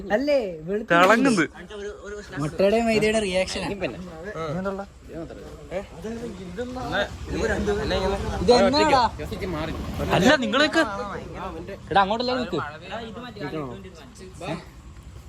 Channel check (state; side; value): identical; both; correlation 1.00